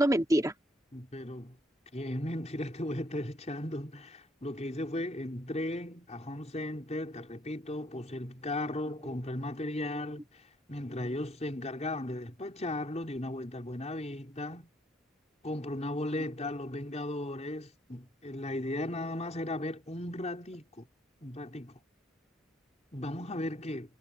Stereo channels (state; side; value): normal; both; correlation 0.68